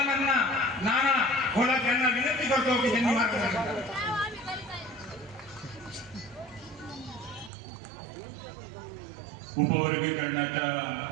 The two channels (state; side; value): drops out; left; at 7.5 s